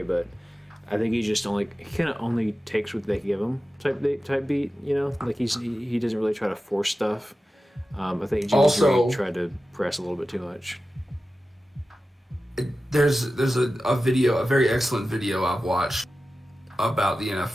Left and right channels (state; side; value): normal; both; correlation 0.94